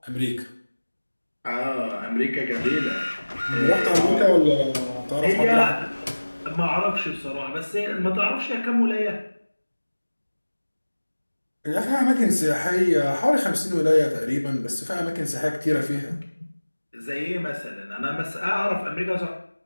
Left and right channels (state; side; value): inverted; both; correlation -1.00